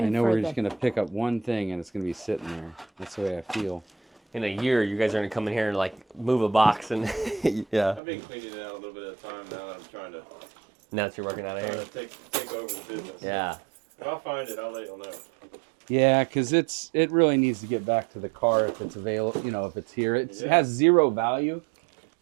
I know for we're the. just gonna pick up one thing and it's gonna be sitting there. That's the way I feel. In a year, you guys are gonna come in here and like move a box and yeah. I've been cleaning it out a little bit at a time now that I'm trying to Now that you're working out of here. take over the business. Yeah. If I find it, I'll let you know. Yeah, because it really needs to get back to the car if it's available. You know, if it's here, it has zero value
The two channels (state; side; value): drops out; left; at 8.0 s